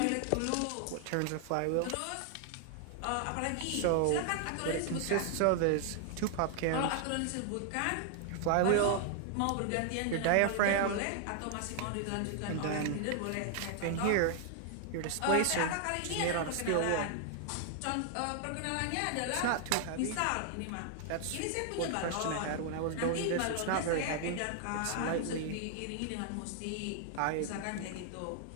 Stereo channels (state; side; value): different; both; correlation 0.00